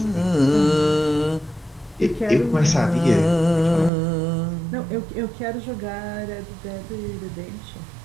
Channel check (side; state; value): left; drops out; at 3.9 s